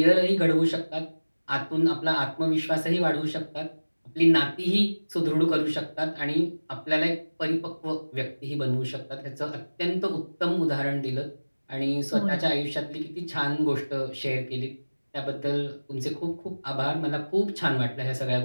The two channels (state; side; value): inverted; both; correlation -1.00